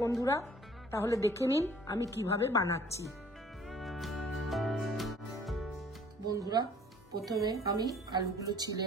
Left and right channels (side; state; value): both; normal; correlation 0.54